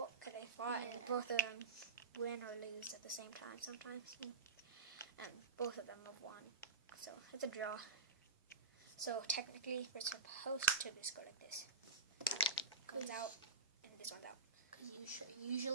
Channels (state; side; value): quieter; left; 3.8 dB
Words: They fought, and both of them win or lose at the same time sometimes. And both of them have won. So it's a draw. So technically, we're supposed to just go like this. Comes out, and this one's out. Because